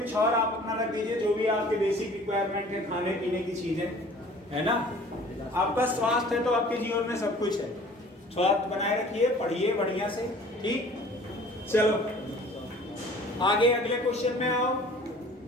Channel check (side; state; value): both; normal; correlation 0.49